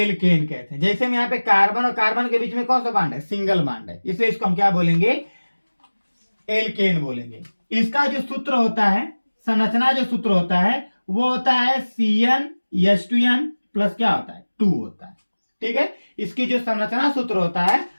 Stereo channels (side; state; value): both; inverted; correlation -1.00